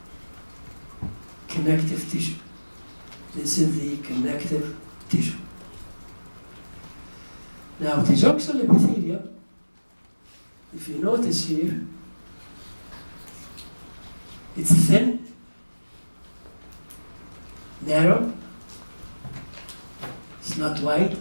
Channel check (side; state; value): both; inverted; correlation -1.00